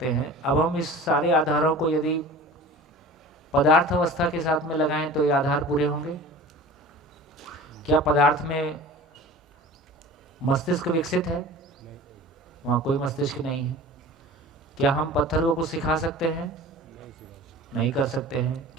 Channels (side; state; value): both; normal; correlation 0.39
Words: हैं। अब हम इस सारे आधारों को यदि पदार्थ अवस्था के साथ में लगाएं तो ये आधार पूरे होंगे। क्या पदार्थ में मस्तिष्क विकसित है? वहाँ कोई मस्तिष्क नहीं है। क्या हम पत्थरों को सिखा सकते हैं? नहीं कर सकते हैं।